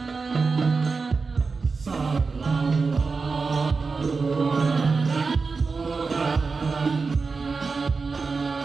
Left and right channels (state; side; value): quieter; left; 4.5 dB